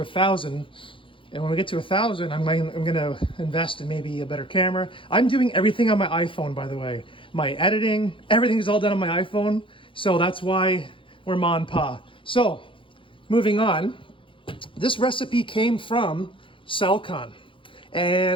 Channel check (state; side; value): late; right; 0.25 ms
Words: And when we get to 1,000, I'm going to invest in maybe a better camera. I'm doing everything on my iPhone, by the way. My editing, everything is all done on my iPhone. So that's why we're ma and pa. So moving on, this recipe came from Saltwater.